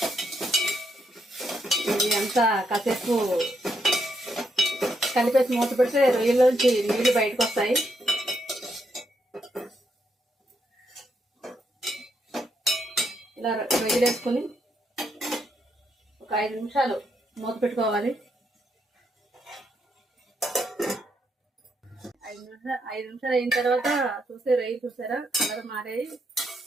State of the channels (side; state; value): both; normal; correlation 0.77